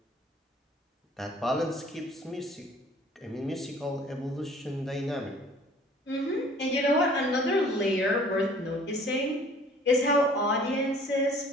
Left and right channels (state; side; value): normal; both; correlation 0.52